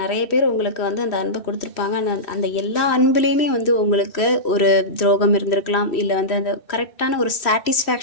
நிறைய பேர் உங்களுக்கு வந்து அந்த அன்பை கொடுத்துருப்பாங்க. அந்த எல்லா அன்புலேயுமே வந்து உங்களுக்கு ஒரு துரோகம் இருந்திருக்கலாம். இல்லை வந்து அந்த கரெக்டான ஒரு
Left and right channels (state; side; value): late; right; 3.1 ms